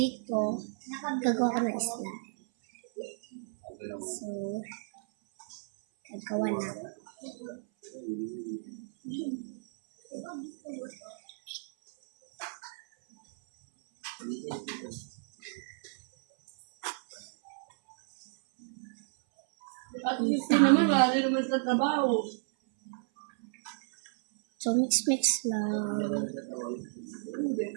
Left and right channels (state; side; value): silent; left; 56 dB below the other